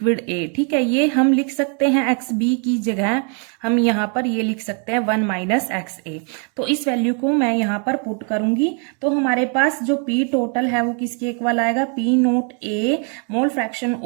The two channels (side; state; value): left; quieter; 39.8 dB